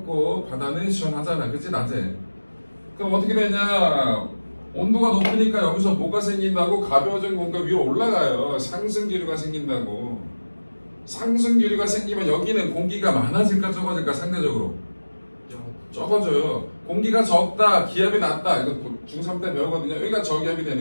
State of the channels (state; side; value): inverted; both; correlation -1.00